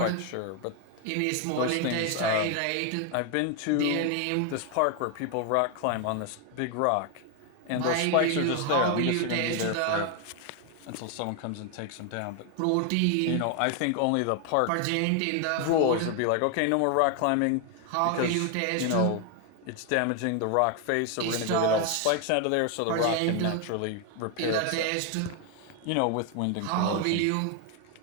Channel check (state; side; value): different; both; correlation 0.01